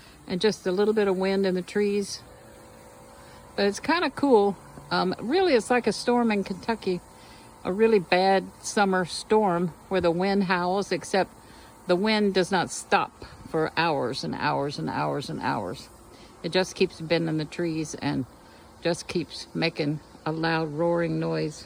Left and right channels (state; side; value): identical; both; correlation 1.00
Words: and just a little bit of wind in the trees. But it's kind of cool. Really, it's like a storm in Kentucky, a really bad summer storm where the wind howls, except the wind does not stop for hours and hours and hours and hours. It just keeps bending the trees and just keeps making a loud roaring noise.